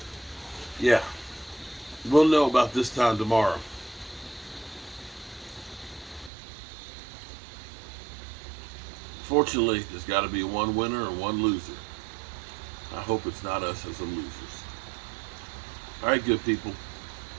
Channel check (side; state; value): left; drops out; at 6.3 s